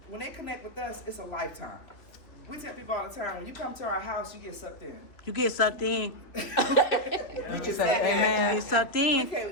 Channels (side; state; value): right; late; 2.8 ms